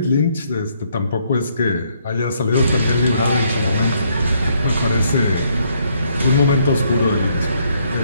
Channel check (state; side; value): inverted; both; correlation -0.71